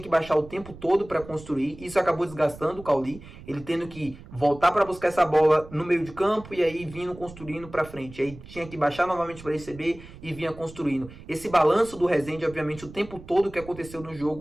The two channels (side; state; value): right; noise; rumble, 17 dB below the sound